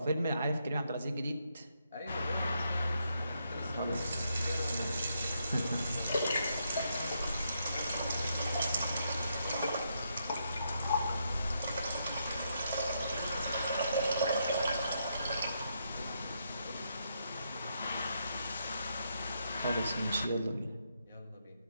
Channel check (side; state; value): both; inverted; correlation -0.79